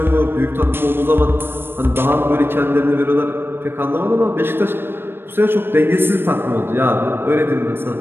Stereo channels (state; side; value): late; left; 0.10 ms